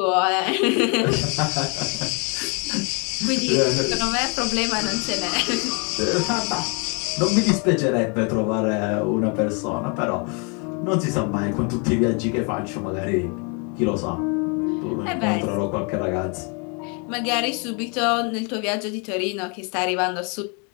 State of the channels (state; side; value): quieter; right; 34.7 dB